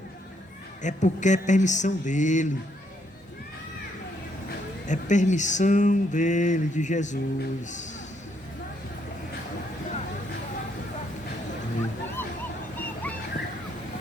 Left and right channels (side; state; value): both; normal; correlation 0.72